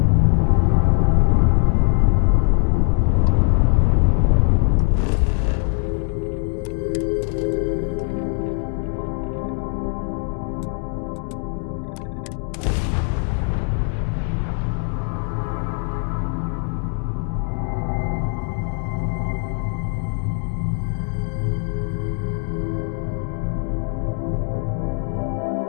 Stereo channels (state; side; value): quieter; right; 39.1 dB